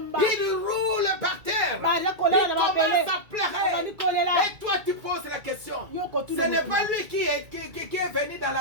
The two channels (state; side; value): late; left; 2.3 ms